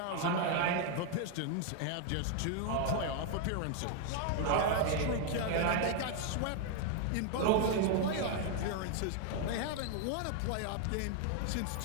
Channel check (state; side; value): different; both; correlation 0.00